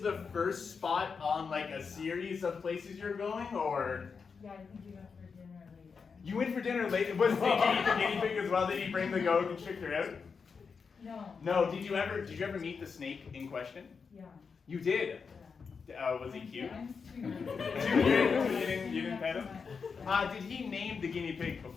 first spot on like a series of places you're going, or? Yeah, I think you went for dinner later. You went for dinner later? Was did you eat the guinea pig as well? Did he bring the goat and trick her out? No. No. Did you ever meet the snake in question? Yeah. You did. Yeah. Was he cute? I'm So you didn't pet him? Did he name the guinea pig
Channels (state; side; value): quieter; right; 5.5 dB